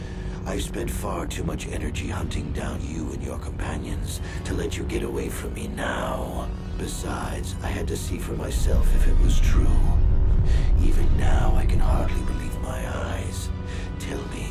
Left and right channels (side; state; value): both; identical; correlation 1.00